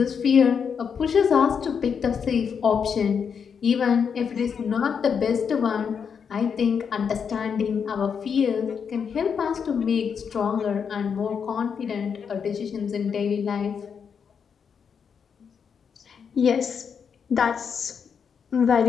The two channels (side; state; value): right; quieter; 6.7 dB